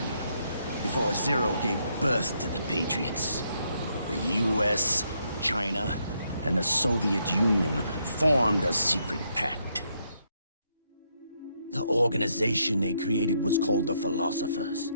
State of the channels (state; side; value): inverted; both; correlation -0.75